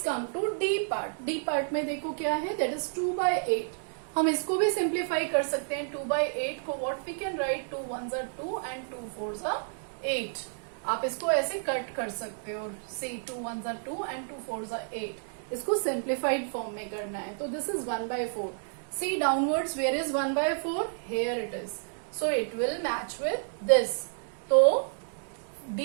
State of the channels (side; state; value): left; silent; digital silence